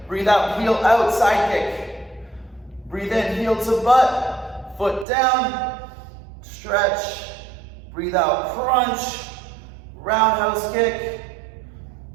Breathe out, heel out, side kick. Breathe in, heel to butt, foot down, stretch. Breathe out, crunch, roundhouse kick.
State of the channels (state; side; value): drops out; left; at 5.1 s